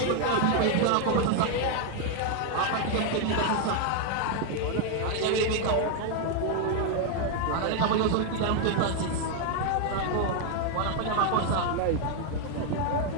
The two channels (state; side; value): different; both; correlation 0.01